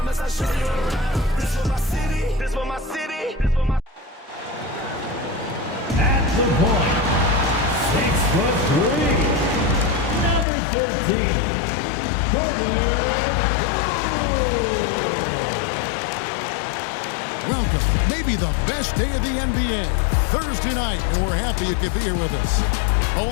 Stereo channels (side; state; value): right; drops out; at 10.5 s